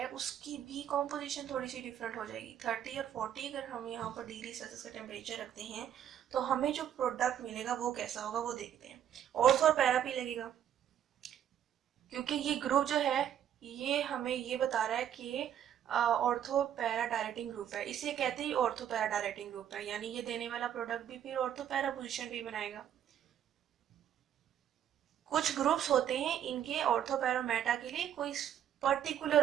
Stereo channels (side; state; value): left; quieter; 10.0 dB